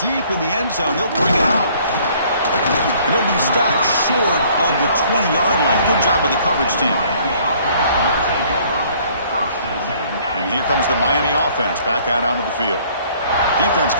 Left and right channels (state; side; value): inverted; both; correlation -0.59